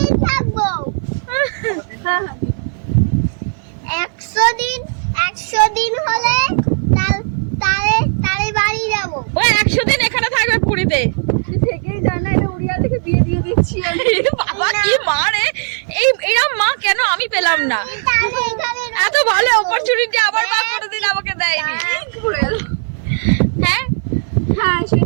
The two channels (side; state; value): left; silent; 57 dB below the other